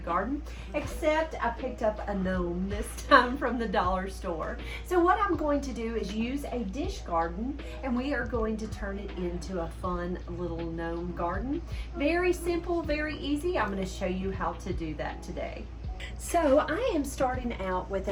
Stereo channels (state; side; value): identical; both; correlation 1.00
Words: except I picked up a gnome this time from the dollar store. So what I'm going to do is use a dish garden and we are going to turn it into a fun little gnome garden. Very simple, very easy. I'm going to show you how to do that today. So I am starting out with